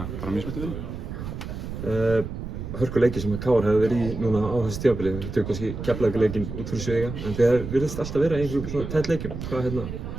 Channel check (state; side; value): noise; right; rumble, 7 dB below the sound